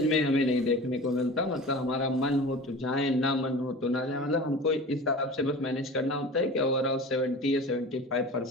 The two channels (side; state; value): both; normal; correlation 0.36